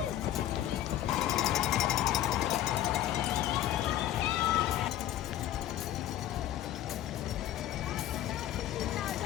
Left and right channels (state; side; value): quieter; right; 12.6 dB